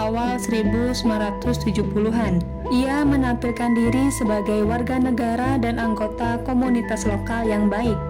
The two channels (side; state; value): both; identical; correlation 1.00